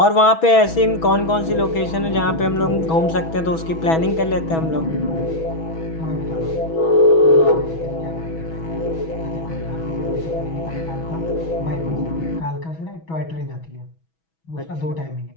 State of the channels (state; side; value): late; right; 6.1 ms